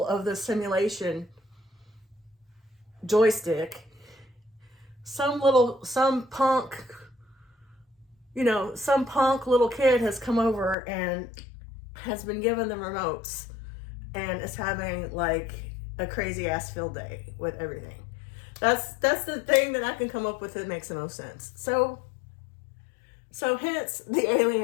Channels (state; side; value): drops out; right; at 10.8 s